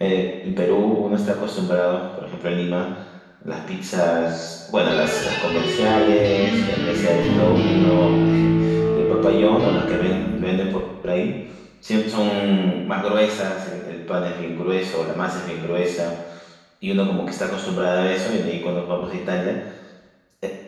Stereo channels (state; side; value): identical; both; correlation 1.00